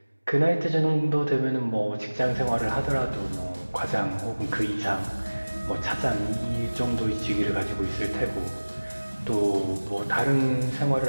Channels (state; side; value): inverted; both; correlation -1.00